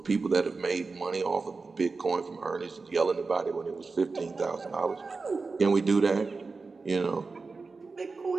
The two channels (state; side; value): quieter; left; 4.2 dB